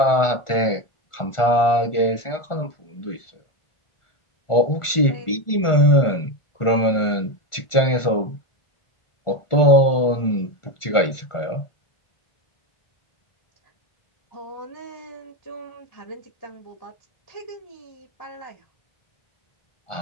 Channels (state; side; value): late; right; 1.4 ms